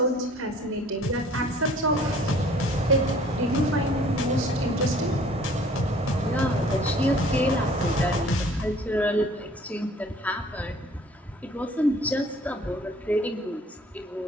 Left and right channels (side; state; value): both; normal; correlation 0.53